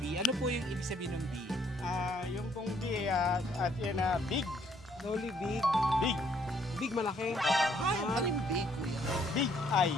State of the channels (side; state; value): both; normal; correlation 0.67